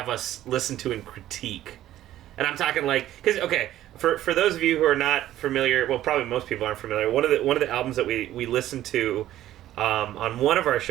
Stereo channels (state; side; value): quieter; left; 13.3 dB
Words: us listen to and critique? And I'm talking because for those of you who are not familiar, well, probably most people aren't familiar. One of the albums that we listened to. On one of our